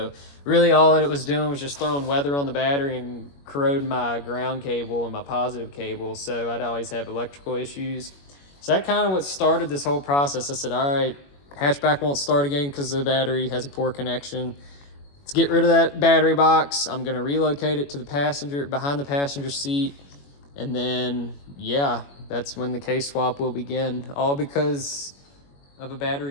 really all that it was doing was just throwing weather on the battery and corroding my ground cable and my positive cable. So I'd always have electrical issues. So that kind of what started this whole process. I said, all right, hatchback won't start again because the battery has a poor connection. Let's get rid of that battery box. I'm gonna relocate it to the passenger, behind the passenger seat. And then, yeah, that's when the K-swap will begin, all because of a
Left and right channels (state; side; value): late; right; 21 ms